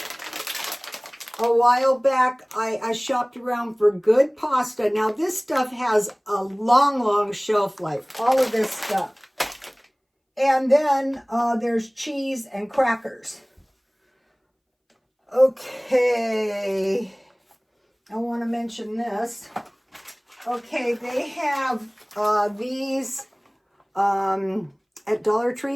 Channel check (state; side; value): identical; both; correlation 1.00